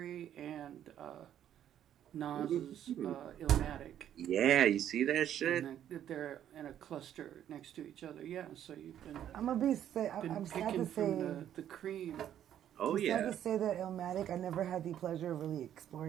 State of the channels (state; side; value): quieter; left; 10.6 dB